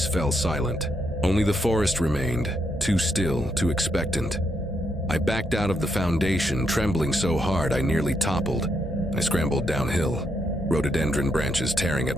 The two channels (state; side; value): normal; both; correlation 0.78